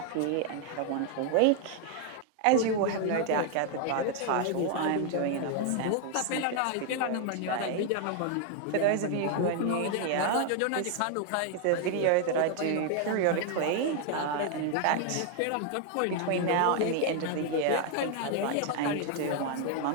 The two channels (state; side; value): different; both; correlation 0.00